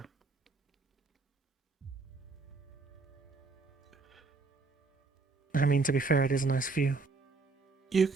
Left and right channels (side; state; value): left; quieter; 3.9 dB